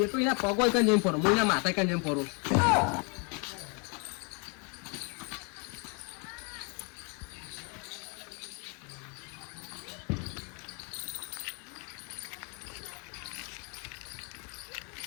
તો એના પગ હોય કઈ ફરો હું એના માથા કઈ ફરું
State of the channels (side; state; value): right; quieter; 35.1 dB